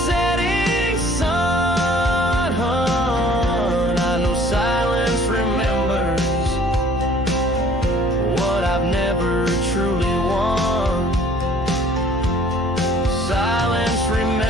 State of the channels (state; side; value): noise; right; hum, 11 dB below the sound